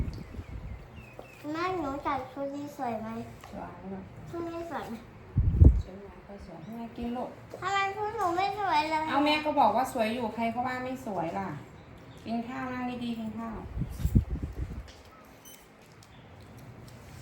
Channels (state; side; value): identical; both; correlation 1.00